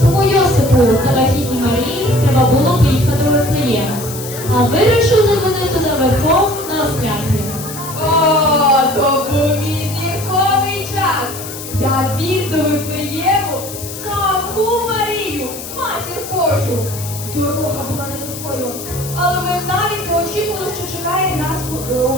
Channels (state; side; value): noise; left; hiss, 11 dB below the sound